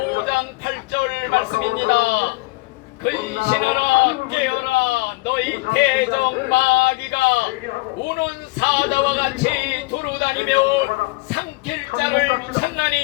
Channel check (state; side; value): quieter; right; 24.1 dB